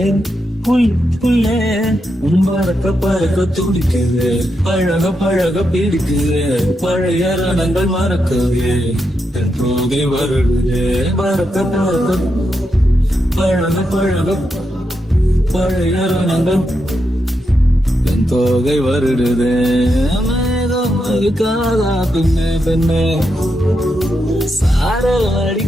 புள்ளே பறக்க பறக்க துடிக்குது, பழக பழக பிடிக்குது, பழைய ரணங்கள் மறக்கவே தோகை வருடுது, பறக்க பறக்க பழக பழக பழைய ரணங்கள் தோகை வருடுது. மேகம் அடிக்காதா பெண்ணே பெண்ணே, சாரல்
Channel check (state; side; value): normal; both; correlation 0.84